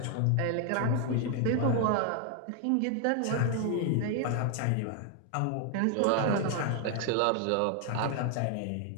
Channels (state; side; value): different; both; correlation 0.00